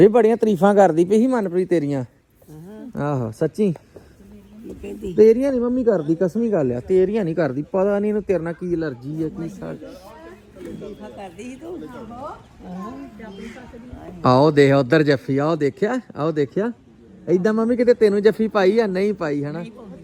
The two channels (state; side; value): identical; both; correlation 1.00